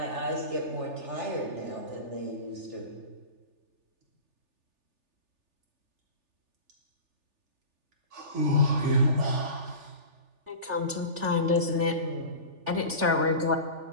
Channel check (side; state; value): left; late; 3.4 ms